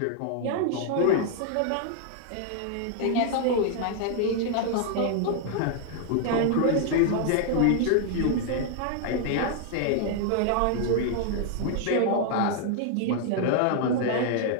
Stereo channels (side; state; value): both; different; correlation -0.01